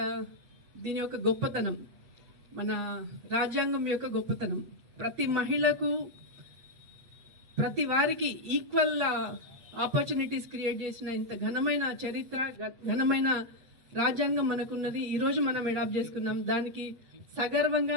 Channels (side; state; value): left; late; 8.2 ms